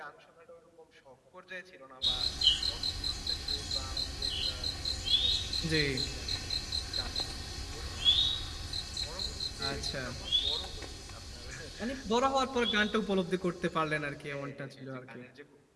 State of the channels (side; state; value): both; identical; correlation 1.00